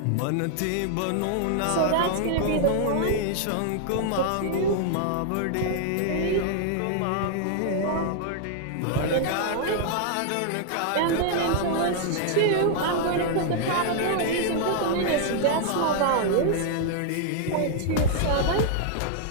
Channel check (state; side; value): different; both; correlation -0.01